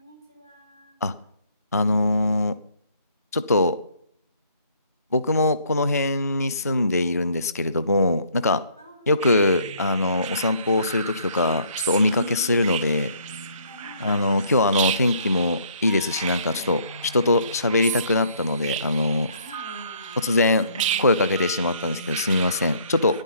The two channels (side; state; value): both; inverted; correlation -0.63